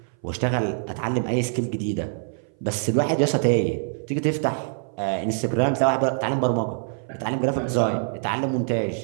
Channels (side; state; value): left; silent; 59 dB below the other